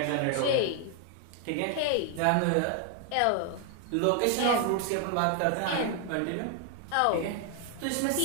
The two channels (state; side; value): different; both; correlation 0.00